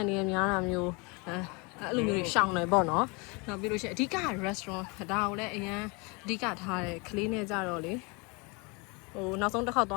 နေနဲ့များတာမျိုးအဲ့လိုမျိုးရှောင်တယ်ပေါ့နော်နောက်ပြီးလို့ရှိရင်အဓိက restaurant ဒါကိုလည်းအရန်အဓိကထားတယ်ခလေးနဲ့ကြတော့လေဟိုနောက်ဆုံးတစ်ခေါက်သွ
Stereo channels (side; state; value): right; quieter; 29.7 dB